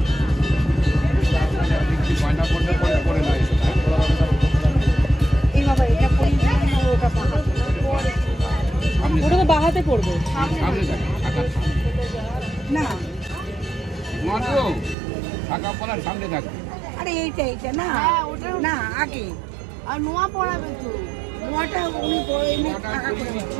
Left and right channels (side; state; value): left; drops out; at 15.0 s